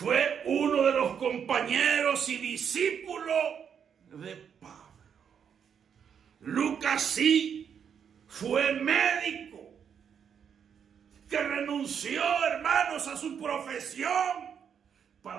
uno de los compañeros y discípulos de Pablo. Lucas sí fue médico que renunció, hermanos, a su profesión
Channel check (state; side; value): quieter; left; 7.7 dB